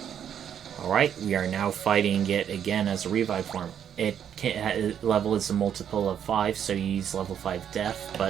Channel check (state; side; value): quieter; left; 9.0 dB